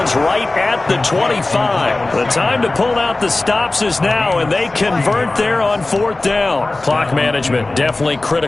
right at the 25. The time to pull out the stops is now, and they convert there on fourth down. Clock management definitely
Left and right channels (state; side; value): quieter; right; 3.0 dB